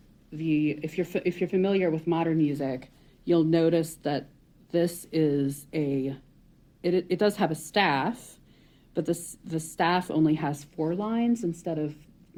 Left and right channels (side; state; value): both; identical; correlation 1.00